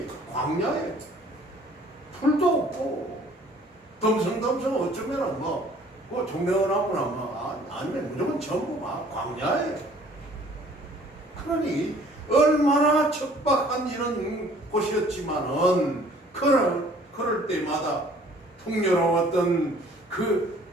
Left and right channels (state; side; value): normal; both; correlation 0.55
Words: 광야에 풀도 없고 덤성덤성 어쩌면은 그 종려나무나 아니면 무조건 전부 막 광야에 그러니 얼마나 척박한 이런 곳이었지만은 그럴 때마다 풍요로웠던 그